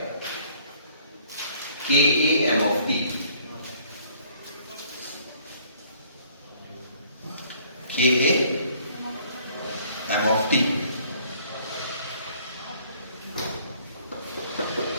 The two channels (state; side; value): inverted; both; correlation -0.59